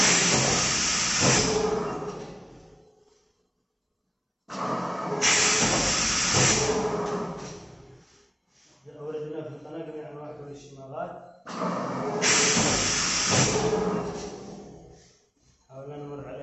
أوردنا في القناة جميع أنواع كوي الشماغات. حاولنا نمر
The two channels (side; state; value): both; identical; correlation 1.00